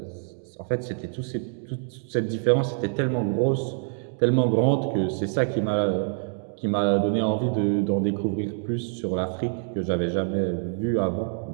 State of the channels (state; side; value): silent; left; 57 dB below the other